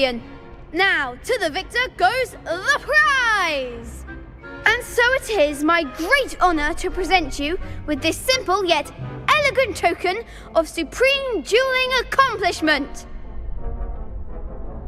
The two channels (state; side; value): identical; both; correlation 1.00